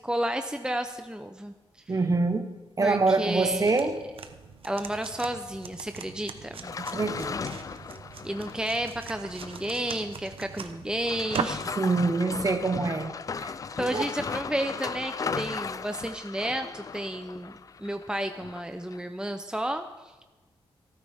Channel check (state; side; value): normal; both; correlation 0.74